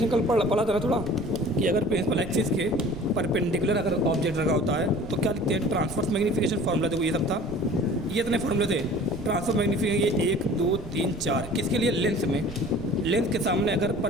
कल पढ़ा था ना थोड़ा, कि अगर प्रिंसिपल एक्सिस के परपेंडिकुलर अगर ऑब्जेक्ट रखा होता है तो क्या लिखते हैं, ट्रांसफर्स मैग्नीफिकेशन फार्मूला। देखो ये सब था, ये इतने फार्मूले थे। ट्रांसफर मैग्नीफिकेशन ये 1 2 3 4 किसके लिए, लेंस में। लेंस के सामने अगर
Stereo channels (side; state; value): right; noise; rumble, 14 dB below the sound